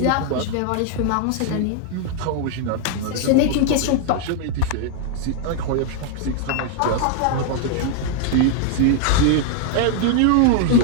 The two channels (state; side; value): different; both; correlation 0.00